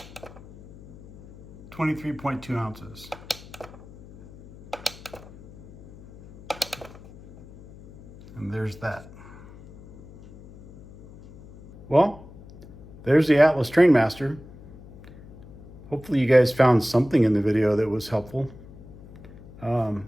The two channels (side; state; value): left; noise; hum, 19 dB below the sound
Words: 23.2 ounces. And there's that. Well, there's the Atlas Trainmaster. Hopefully you guys found something in the video that was helpful. You